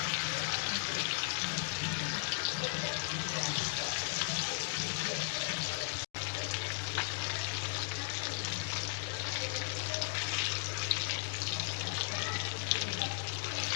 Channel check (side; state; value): right; silent; digital silence